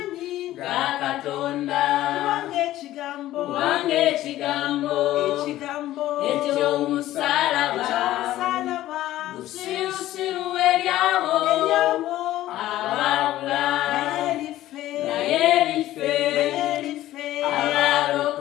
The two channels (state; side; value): quieter; right; 14.6 dB